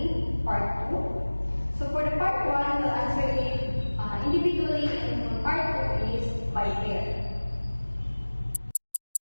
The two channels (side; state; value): both; inverted; correlation -1.00